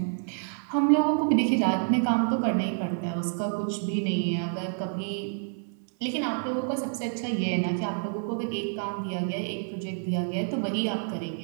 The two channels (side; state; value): left; silent; 59 dB below the other